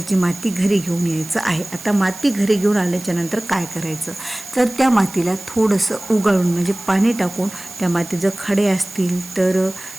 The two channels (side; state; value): right; noise; hiss, 15 dB below the sound